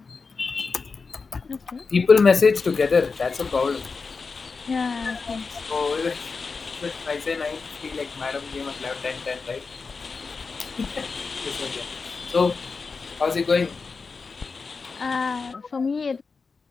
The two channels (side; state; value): right; quieter; 4.7 dB